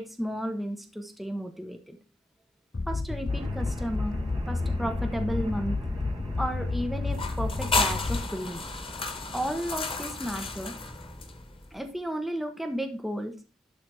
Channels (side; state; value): both; normal; correlation 0.81